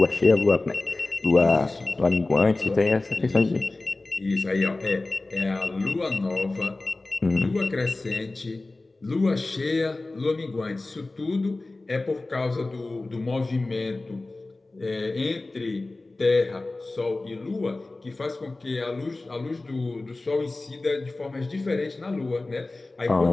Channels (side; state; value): right; quieter; 3.1 dB